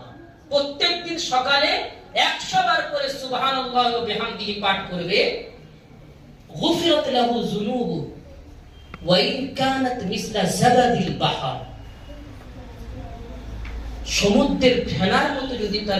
প্রত্যেক দিন সকালে 100 বার করে সুবহানাল্লাহি ওয়া বিহামদিহি পাঠ করবে, গুফিরাত লাহু যুনুবু ওয়া ইন কানাত মিসলা জাবাদিল বাহর, সমুদ্রের ফেনার মতো যদি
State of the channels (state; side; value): identical; both; correlation 1.00